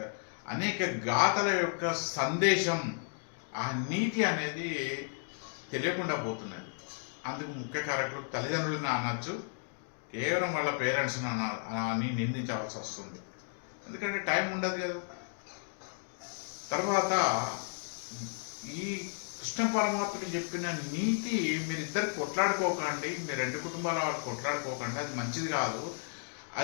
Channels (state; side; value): silent; right; 55 dB below the other